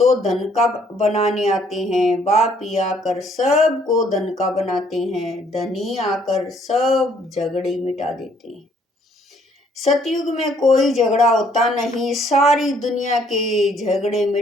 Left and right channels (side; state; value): both; normal; correlation 0.65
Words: धन का बनाने आते हैं। बाप ही आकर सबको धन का बनाते हैं, धनी आकर सब झगड़े मिटा देते हैं। सतयुग में कोई झगड़ा होता नहीं, सारी दुनिया के झगड़े